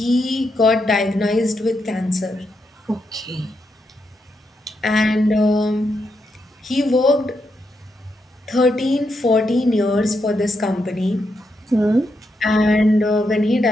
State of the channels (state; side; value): normal; both; correlation 0.82